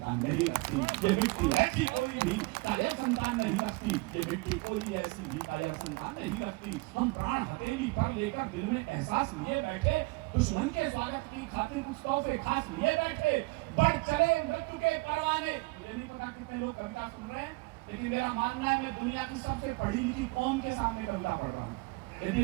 नहीं रखती। ये मिट्टी ऐसी कोई भी कायर संतान नहीं रखती। ये मिट्टी कोई ऐसी भी कायर संतान नहीं रखती। हम प्राण हथेली पर लेकर दिल में एहसास लिए बैठे, दुश्मन के स्वागत की खातिर कुछ तोहफे खास लिए बैठे। बढ़ चले मृत्यु के परवाने। मुझे नहीं पता कितने लोग कविता सुन रहे हैं, लेकिन मेरा मानना है मैं दुनिया की सबसे पढ़ी लिखी कौम के सामने कविता पढ़ रहा हूँ।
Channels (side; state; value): left; quieter; 25.1 dB